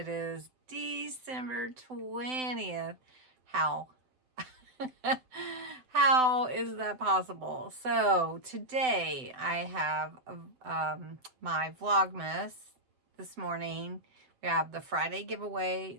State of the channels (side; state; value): left; late; 7.8 ms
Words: is December 20th. How? How is that possible? So today I have my Vlogmas this morning. We have the Friday giveaway